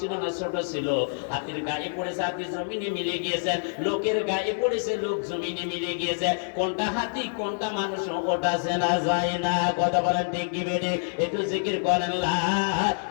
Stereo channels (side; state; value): right; silent; digital silence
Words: না ছোট ছিল? হাতির গায়ে পড়েছে, হাতি জমিনে মিলে গিয়েছে। লোকের গায়ে পড়েছে, লোক জমিনে মিলে গিয়েছে। কোনটা হাতি কোনটা মানুষ ওটা চেনা যায় না। কথা বলেন ঠিক কি বেঠে? একটু জিকির করেন লা